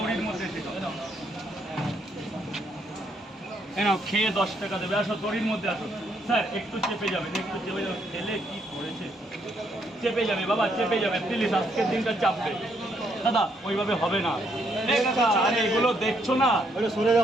মধ্যে এসে খাও নাও খেয়ে 10 টাকা দেবে আসো তরির মধ্যে আসো স্যার একটু চেপে যাবেন খেলে কি করেছে চেপে যাবে বাবা চেপে যাবে প্লিজ আজকের দিনটা চাপবে দাদা ওইভাবে হবে না আরে এগুলো দেখছো না সরে যাও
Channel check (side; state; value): both; normal; correlation 0.73